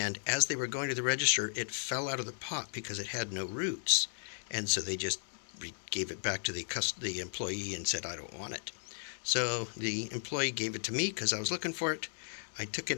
as they were going to the register, it fell out of the pot because it had no roots. And so they just gave it back to the employee and said, I don't want it. So the employee gave it to me because I was looking for it. I took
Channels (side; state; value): right; silent; 54 dB below the other